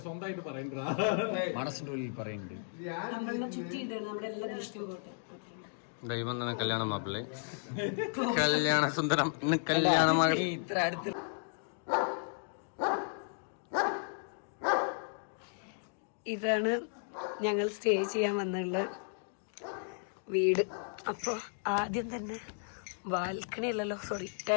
മനസ്സിന്റെ ഉള്ളിൽ പറയുന്നുണ്ട്. നമ്മളെ ചുറ്റിയിട്ടാണ് നമ്മുടെ എല്ലാ ദൃഷ്ടിയും പോട്ടെ. ദൈവം തന്നെ കല്യാണ മാപ്പിള്ളേ, കല്യാണ സുന്ദരം, ഇന്ന് കല്യാണ മകൾ. ഇത്ര അടുത്ത് ഇതാണ് ഞങ്ങൾ സ്റ്റേ ചെയ്യാൻ വന്നുള്ള വീട്. അപ്പോൾ ആദ്യം തന്നെ ബാൽക്കണി അല്ലല്ലോ, സോറി,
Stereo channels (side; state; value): right; silent; digital silence